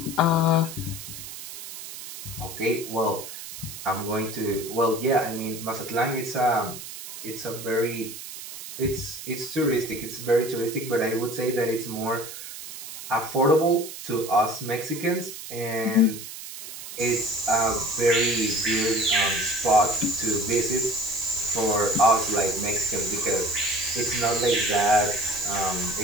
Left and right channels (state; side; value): noise; right; hiss, 11 dB below the sound